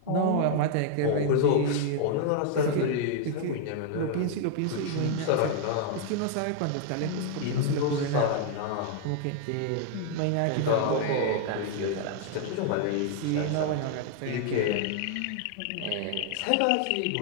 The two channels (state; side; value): different; both; correlation 0.00